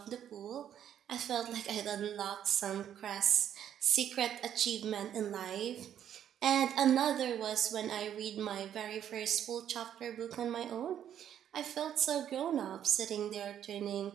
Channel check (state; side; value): quieter; left; 10.0 dB